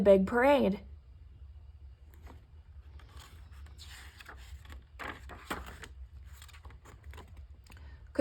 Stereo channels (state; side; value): identical; both; correlation 1.00